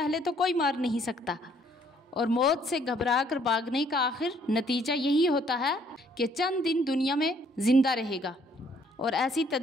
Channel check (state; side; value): normal; both; correlation 0.64